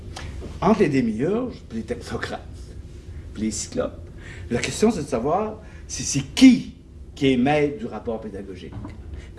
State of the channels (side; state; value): both; identical; correlation 1.00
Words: Entre les démiurges, puis les technocrates, puis les cyclopes, la question c'est de savoir c'est qui est maître du rapport pédagogique.